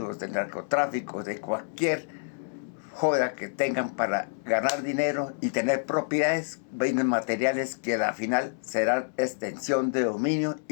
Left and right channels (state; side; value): silent; right; 59 dB below the other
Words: del narcotráfico, de cualquier joda que tengan para ganar dinero y tener propiedades, bienes materiales que al final serán extensión de dominio